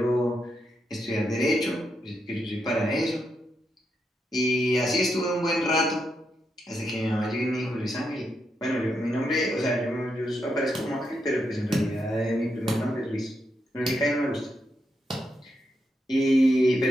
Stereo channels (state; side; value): normal; both; correlation 0.83